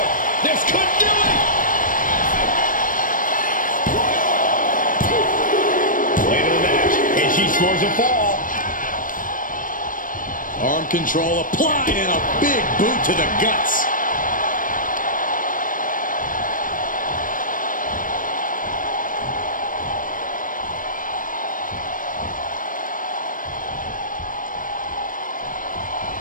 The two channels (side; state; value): right; late; 0.39 ms